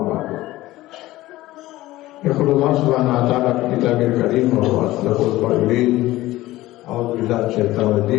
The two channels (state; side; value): quieter; right; 17.1 dB